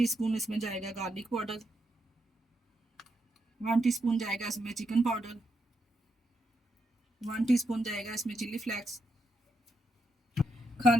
इसमें जाएगा गार्लिक पाउडर। 1 टीस्पून जाएगा इसमें चिकन पाउडर। 1 टीस्पून जाएगा इसमें चिली फ्लेक्स।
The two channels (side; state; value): both; normal; correlation 0.81